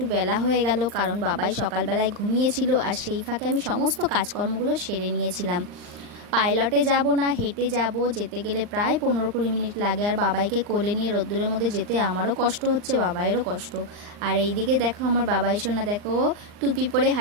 বেলা হয়ে গেল, কারণ বাবাই সকালবেলায় ঘুমিয়েছিল আর সেই ফাঁকে আমি সমস্ত কাজকর্মগুলো সেরে নিয়েছিলাম। পাইলটে যাব না হেঁটে যাব, যেতে গেলে প্রায় 15-20 মিনিট লাগে। আর বাবাইকে কোলে নিয়ে রোদ্দুরের মধ্যে যেতে আমারও কষ্ট হচ্ছে, বাবাইয়েরও কষ্ট। আর এইদিকে দেখো আমার বাবাই সোনা, দেখো টুপি পরে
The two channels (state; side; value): late; left; 39 ms